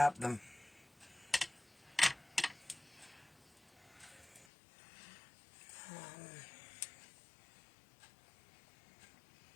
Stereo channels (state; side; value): drops out; right; at 4.5 s